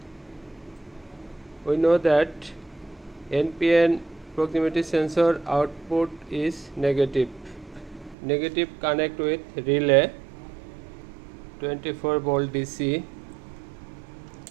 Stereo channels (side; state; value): left; drops out; at 8.2 s